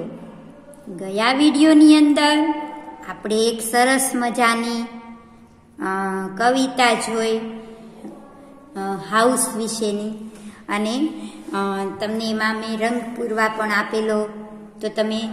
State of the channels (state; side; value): identical; both; correlation 1.00